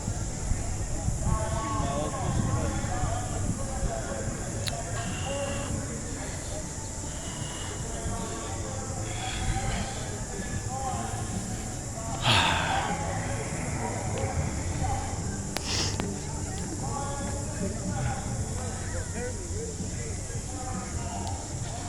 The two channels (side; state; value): both; identical; correlation 1.00